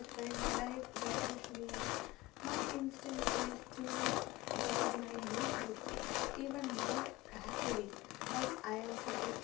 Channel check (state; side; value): quieter; right; 20.1 dB